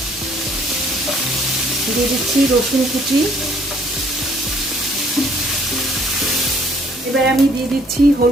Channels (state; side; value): normal; both; correlation 0.61